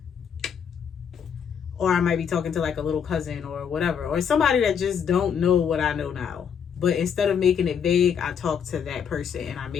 Or I might be talking to like a little cousin or whatever, or somebody that just don't know what I know now. but instead of making it vague, I talk to that person and I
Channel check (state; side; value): quieter; right; 7.4 dB